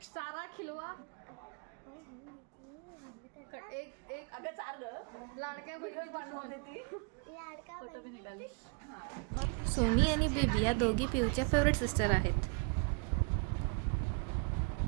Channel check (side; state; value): left; quieter; 35.2 dB